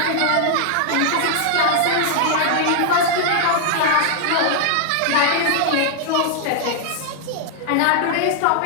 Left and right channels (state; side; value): different; both; correlation -0.01